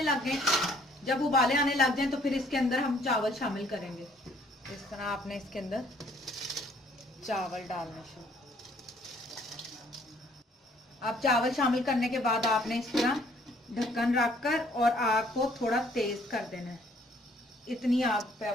लग गए। जब उबाले आने लग जाए तो फिर इसके अंदर हम चावल शामिल करेंगे। इस तरह आपने इसके अंदर चावल डालना शुरू। अब चावल शामिल करने के बाद आपने इस तरह ढक्कन रखकर और आग को थोड़ा तेज कर देना है। इतनी आग पे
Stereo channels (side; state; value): both; normal; correlation 0.62